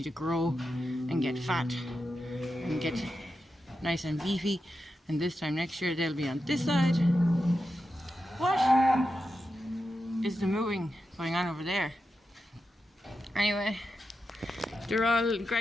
to grow and get fat and get nice and beefy, and this time next year they'll be on this side. What is the moving going on over there? Anyway, they're all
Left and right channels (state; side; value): normal; both; correlation 0.89